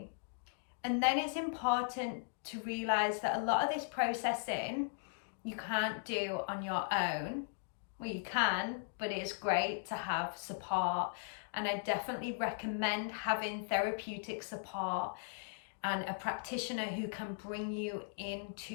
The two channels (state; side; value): silent; right; digital silence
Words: And then it's important to realize that a lot of this processing you can't do on your own. Well, you can, but it's great to have support. And I definitely recommend having therapeutic support and a practitioner who can bring you into